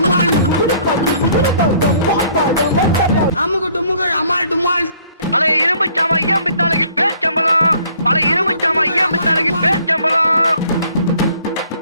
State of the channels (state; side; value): inverted; both; correlation -0.59